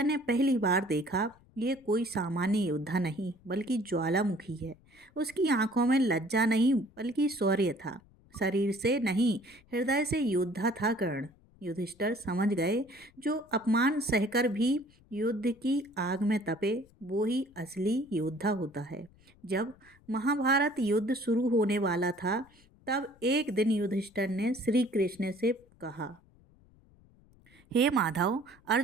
ने पहली बार देखा, ये कोई सामान्य योद्धा नहीं बल्कि ज्वालामुखी है। उसकी आंखों में लज्जा नहीं बल्कि शौर्य था। शरीर से नहीं, हृदय से योद्धा था कर्ण। युधिष्ठिर समझ गए, जो अपमान सहकर भी युद्ध की आग में तपे, वो ही असली योद्धा होता है। जब महाभारत युद्ध शुरू होने वाला था, तब एक दिन युधिष्ठिर ने श्री कृष्ण से कहा, हे माधव,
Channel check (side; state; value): left; noise; rumble, 29 dB below the sound